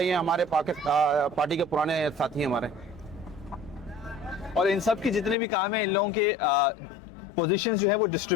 हैं, हमारे पार्टी के पुराने साथी हैं हमारे। और इन सब की जितने भी काम हैं, इन लोगों के पोजीशंस जो है वो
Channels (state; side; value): drops out; right; at 5.4 s